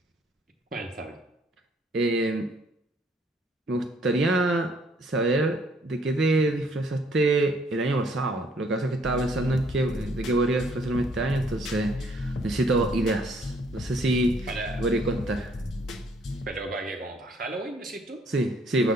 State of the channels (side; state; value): both; normal; correlation 0.64